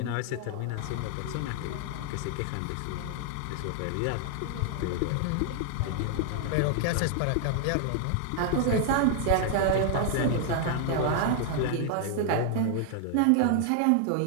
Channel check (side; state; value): both; different; correlation 0.00